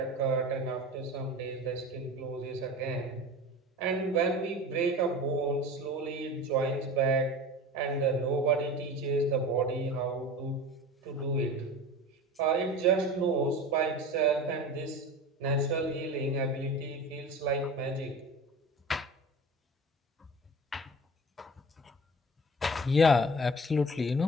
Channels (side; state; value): both; normal; correlation 0.36